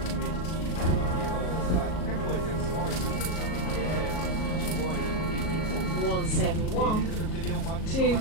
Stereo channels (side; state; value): right; late; 38 ms